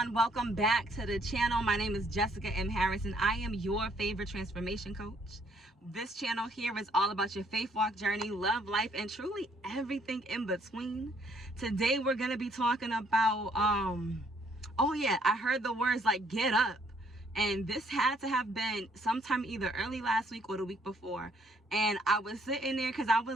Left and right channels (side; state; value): both; normal; correlation 0.66